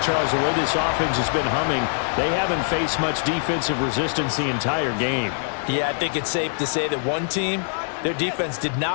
Charles, the way this offense has been humming, they haven't faced much defensive resistance the entire game. Yeah, I think it's safe to say that one team, their defense did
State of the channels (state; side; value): silent; right; 59 dB below the other